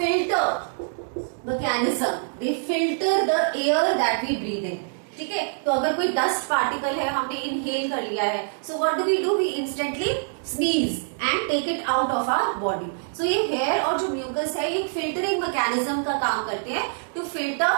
mechanism. They filter the air that we breathe in. ठीक है, तो अगर कोई डस्ट पार्टिकल है, हमने इनहेल कर लिया है, so what do we do? We instantly sneeze and take it out of our body. So ये हेयर और जो म्यूकस है ये फिल्टरिंग मैकेनिज्म का काम करते हैं to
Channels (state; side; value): silent; left; digital silence